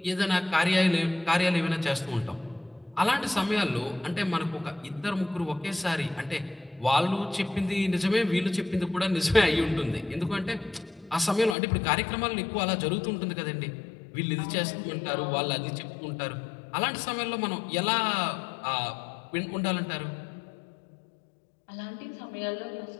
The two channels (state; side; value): drops out; right; at 11.6 s